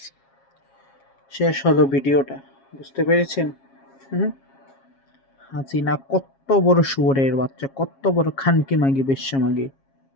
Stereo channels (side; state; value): right; late; 7.4 ms